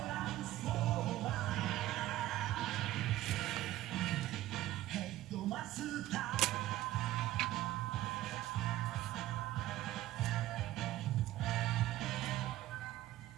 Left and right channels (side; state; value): left; quieter; 15.0 dB